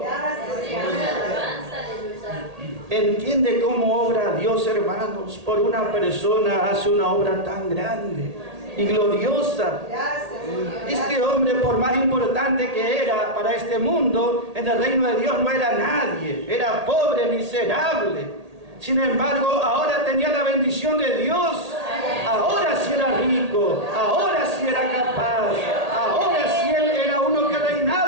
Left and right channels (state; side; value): late; left; 1.8 ms